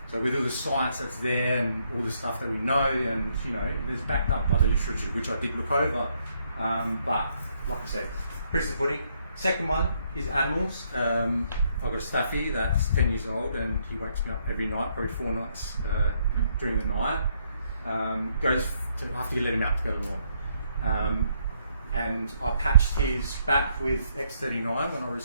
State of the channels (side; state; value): both; inverted; correlation -0.72